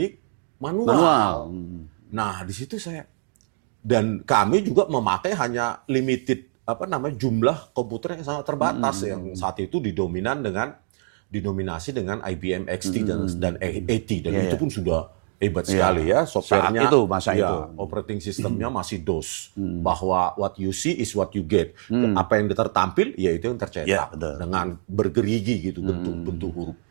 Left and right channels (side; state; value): left; silent; digital silence